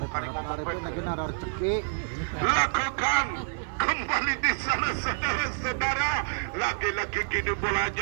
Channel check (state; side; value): silent; left; 56 dB below the other